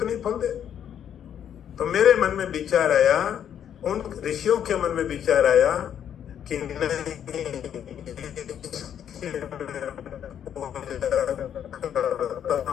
फल दे। तो मेरे मन में विचार आया, उन ऋषियों के मन में विचार आया कि नहीं,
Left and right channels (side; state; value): right; quieter; 9.3 dB